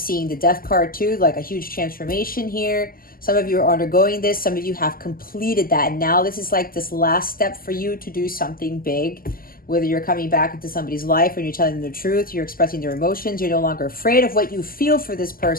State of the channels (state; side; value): late; right; 0.42 ms